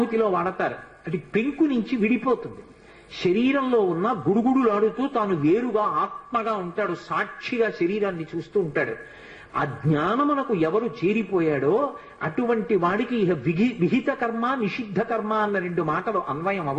వాడతారు. అది పెంకు నుంచి విడిపోతుంది. శరీరంలో ఉన్న గుడుగుడులాడుతూ తాను వేరుగా ఆత్మగా ఉంటాడు. సాక్షిగా శరీరాన్ని చూస్తూ ఉంటాడు. ఆ జ్ఞానమునకు ఎవరు చేరిపోయాడో అటువంటి వాడికి ఇహ విహిత కర్మ నిషిద్ధ కర్మ అన్న 2 మాటలు అన్వయం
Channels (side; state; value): both; identical; correlation 1.00